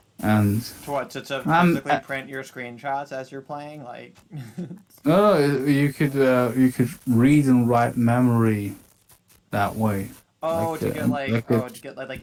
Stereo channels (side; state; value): both; identical; correlation 1.00